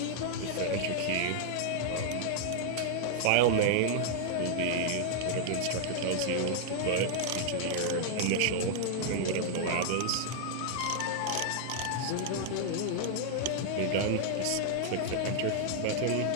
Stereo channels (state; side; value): different; both; correlation -0.01